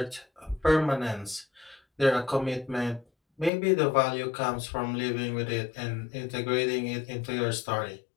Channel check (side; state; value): right; drops out; at 3.5 s